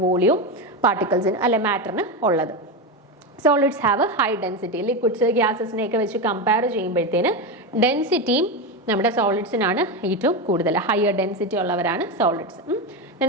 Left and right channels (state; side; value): normal; both; correlation 0.15